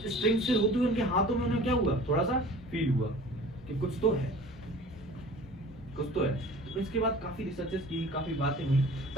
से होती हुई उनके हाथों में उन्हें क्या हुआ, थोड़ा सा फील हुआ कि कुछ तो है, कुछ तो है। तो इसके बाद काफी रिसर्चेस की, काफी बातें हुई,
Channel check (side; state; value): both; normal; correlation 0.44